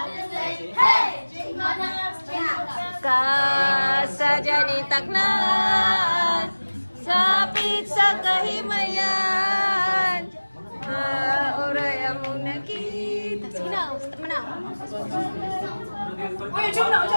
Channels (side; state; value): both; inverted; correlation -1.00